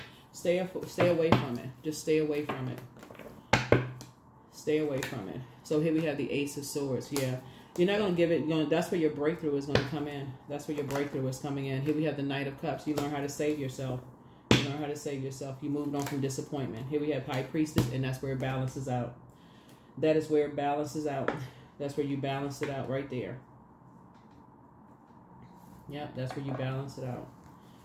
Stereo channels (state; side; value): identical; both; correlation 1.00